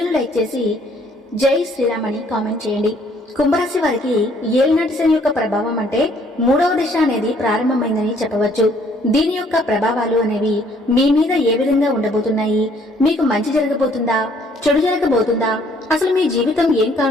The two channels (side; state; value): both; normal; correlation 0.63